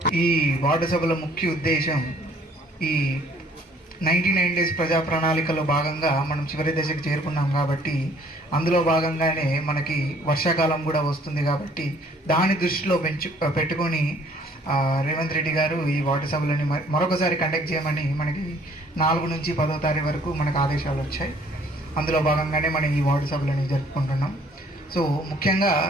ఈ వార్డు సభల ముఖ్య ఉద్దేశం, ఈ 99 డేస్ ప్రజా ప్రణాళికలో భాగంగా మనం చివరి దశకు చేరుకున్నాం. కాబట్టి అందులో భాగంగానే మనకి వర్షాకాలం కూడా వస్తుంది. కాబట్టి దాని దృష్టిలో పెట్టుకొని రేవంత్ రెడ్డి గారు ఈ వార్డు సభలని మరొకసారి కండక్ట్ చేయమని మనకి 4 నుంచి 10వ తారీఖు వరకు మనకు ఆదేశాలు వచ్చాయి. అందులో భాగంగానే మనం ఈ వార్డు సభలని జరుపుకుంటున్నాం. సో ముఖ్యంగా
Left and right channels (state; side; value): normal; both; correlation 0.59